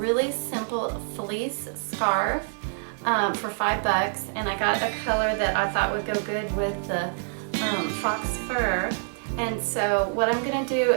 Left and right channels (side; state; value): left; silent; 61 dB below the other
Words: simple fleece scarf for $5, and I got a color that I thought would go good with the fox fur. And so what I'm going to do